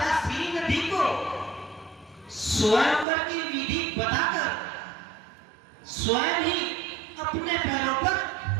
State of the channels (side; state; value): left; drops out; at 3.1 s